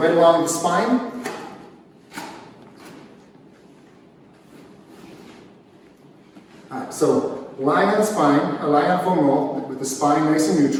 along the spine. Alright, so lying on the spine, lying on foam roll with the spine nice and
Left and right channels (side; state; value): both; identical; correlation 1.00